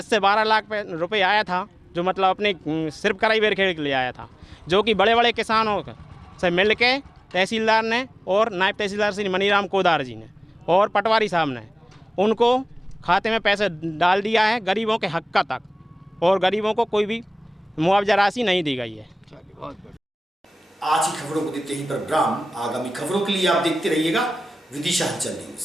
से 12 लाख रुपए आया था, जो मतलब अपने सिर्फ कराईवेरखेड़ी के लिए आया था, जो कि बड़े बड़े किसानों से मिल के तहसीलदार ने और नायब तहसीलदार श्री मनीराम कोदार जी ने और पटवारी साहब ने उनको खाते में पैसे डाल दिया है गरीबों के हक का तक, और गरीबों को कोई भी मुआवजा राशि नहीं दी गई है। आज की खबरों को देते ही पर विराम। आगामी खबरों के लिए आप देखते रहिएगा विदिशा हलचल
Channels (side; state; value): both; normal; correlation 0.97